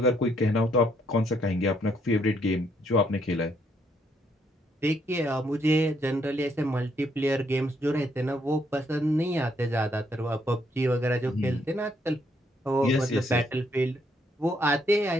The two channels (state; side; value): normal; both; correlation 0.72